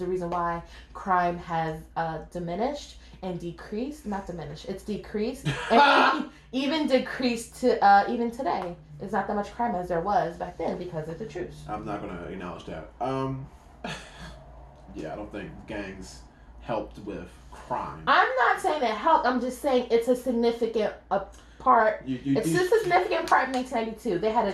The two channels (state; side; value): identical; both; correlation 1.00